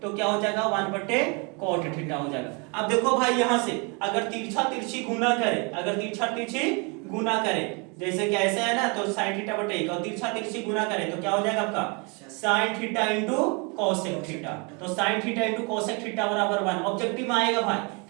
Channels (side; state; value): left; quieter; 32.2 dB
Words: तो क्या हो जाएगा 1 बटे cot थीटा हो जाएगा। अब देखो भाई यहां से अगर तिरछा तिरछी गुना करे, अगर तिरछा तिरछी गुना करे, जैसे कि ऐसे है ना, तो sin थीटा बटे 1 और तिरछा तिरछी गुना करे तो क्या हो जाएगा आपका sin theta into cosec theta. तो sin theta into cosec theta बराबर 1। ऑब्जेक्टिव में आएगा भाई